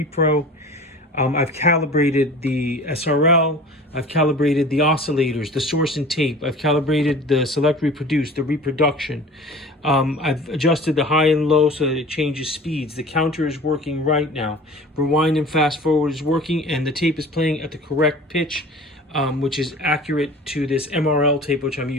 I've calibrated the SRL. I've calibrated the oscillators, the source and tape. I've calibrated the select reproduce, the reproduction. I've adjusted the high and low so that it changes speeds. The counter is working right now. Rewind and fast forward is working, and the tape is playing at the correct pitch, which is accurate to this MRL tape, which I'm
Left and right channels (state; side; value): normal; both; correlation 0.41